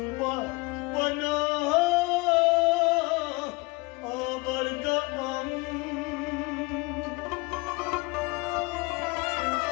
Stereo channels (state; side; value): quieter; right; 25.5 dB